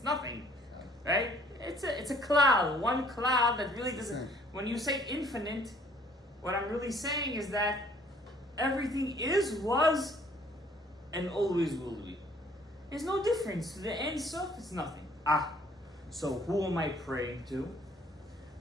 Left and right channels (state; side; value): normal; both; correlation 0.59